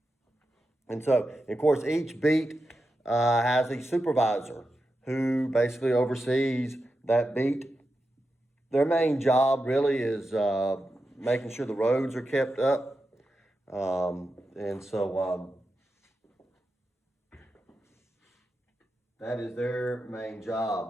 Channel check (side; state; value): both; normal; correlation 0.89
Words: And so, of course, each beat has a supervisor who basically oversees that beat. Their main job really is making sure the roads are kept up. That is their main